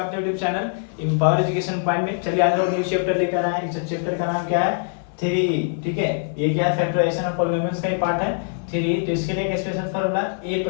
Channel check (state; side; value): silent; right; 64 dB below the other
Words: YouTube channel empower education point में। चलिए आज हम न्यू चैप्टर लेकर आए हैं। इस चैप्टर का नाम क्या है? 3E। ठीक है, ये क्या है? फैक्टराइजेशन ऑफ पॉलिनोमियल्स का ही पार्ट है 3E। तो इसके लिए एक special formula a